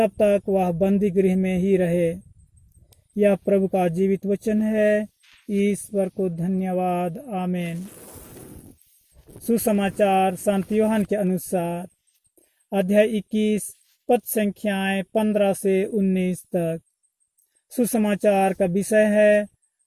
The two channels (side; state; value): both; identical; correlation 1.00